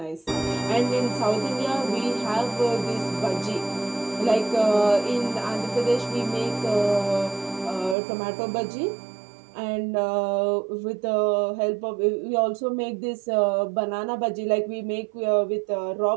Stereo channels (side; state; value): left; drops out; at 8.0 s